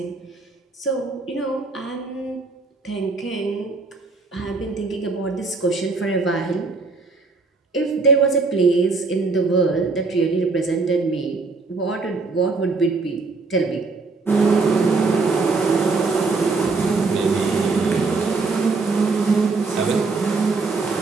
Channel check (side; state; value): left; quieter; 4.0 dB